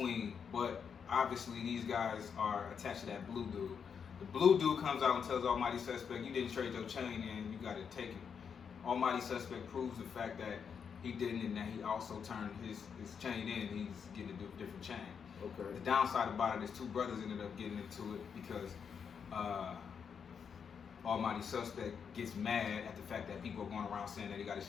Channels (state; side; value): quieter; right; 6.8 dB